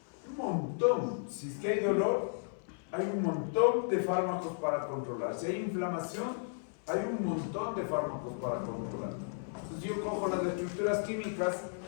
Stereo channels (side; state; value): right; silent; 55 dB below the other